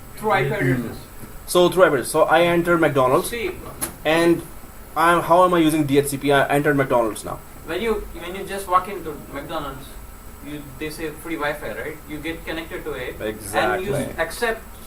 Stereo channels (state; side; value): identical; both; correlation 1.00